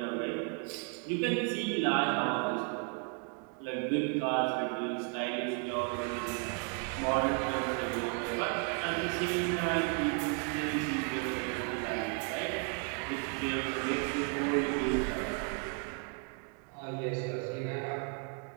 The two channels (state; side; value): quieter; left; 39.6 dB